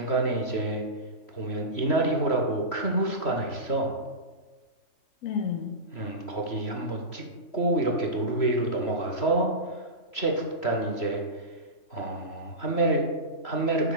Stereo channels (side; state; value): right; late; 3.0 ms